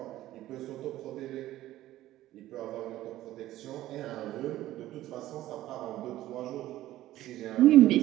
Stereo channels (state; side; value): quieter; left; 14.7 dB